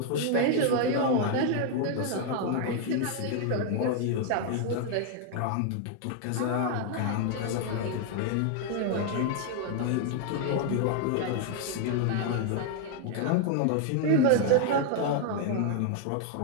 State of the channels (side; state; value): both; different; correlation 0.00